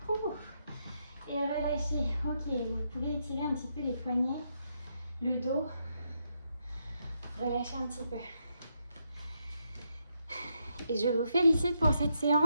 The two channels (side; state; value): both; inverted; correlation -0.80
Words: Et relâchez. Ok, vous pouvez étirer un petit peu les poignets, le dos. Relâchez un petit peu. Et je vous félicite pour cette